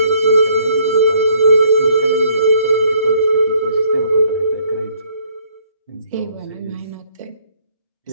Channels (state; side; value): inverted; both; correlation -0.64